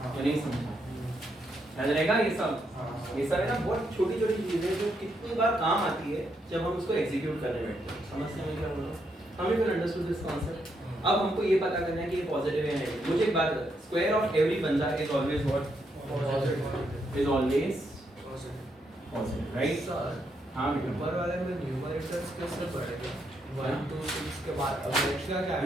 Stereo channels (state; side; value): normal; both; correlation 0.78